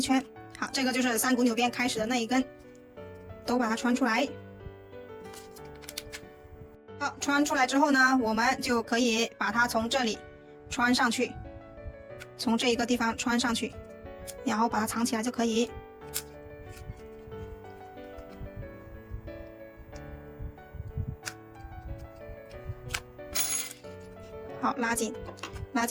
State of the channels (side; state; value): both; identical; correlation 1.00